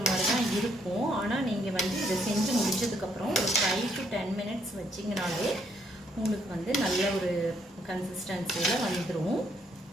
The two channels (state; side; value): normal; both; correlation 0.71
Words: மாதிரி தான் இருக்கும். ஆனால் நீங்கள் வந்து இதை செஞ்சு முடிச்சதுக்கப்புறம் ஒரு 5 to 10 minutes வச்சிங்கனாலே உங்களுக்கு வந்து நல்ல ஒரு கன்சிஸ்டன்சியில் வந்துடும்.